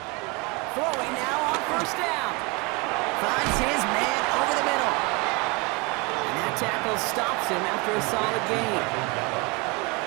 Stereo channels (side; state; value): left; quieter; 28.1 dB